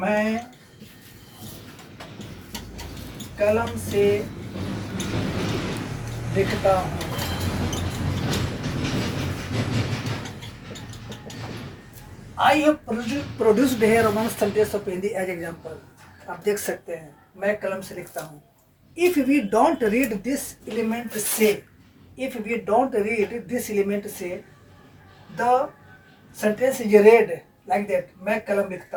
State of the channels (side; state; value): both; identical; correlation 1.00